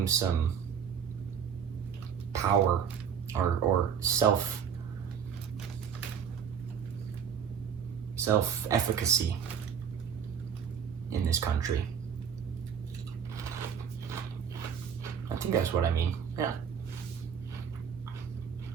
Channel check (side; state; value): left; quieter; 7.6 dB